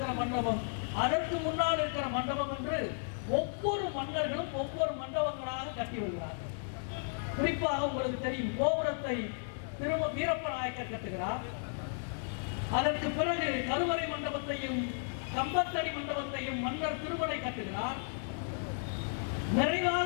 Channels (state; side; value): silent; right; digital silence